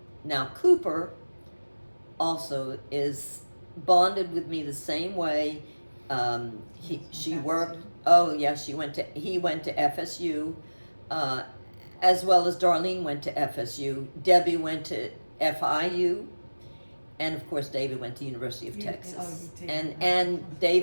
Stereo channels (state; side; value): inverted; both; correlation -1.00